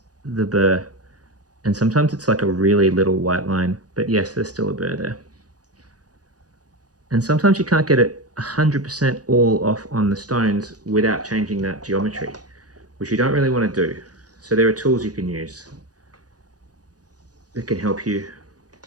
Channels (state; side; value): late; left; 0.68 ms